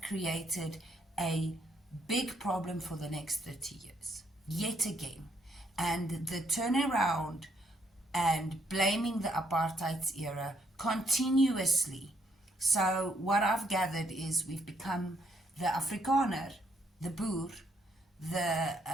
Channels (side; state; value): both; normal; correlation 0.71